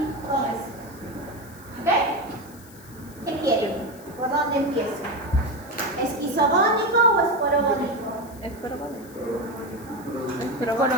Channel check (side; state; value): left; noise; hiss, 21 dB below the sound